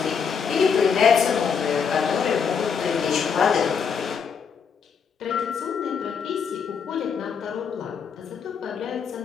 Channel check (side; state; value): right; quieter; 6.5 dB